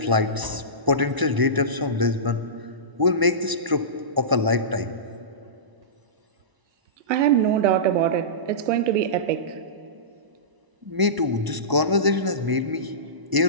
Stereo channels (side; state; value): left; late; 1.0 ms